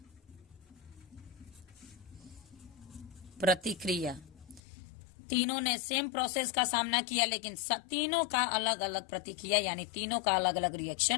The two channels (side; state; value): right; drops out; at 4.6 s